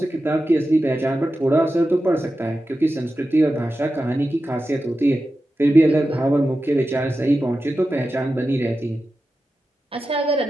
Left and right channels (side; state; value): both; normal; correlation 0.92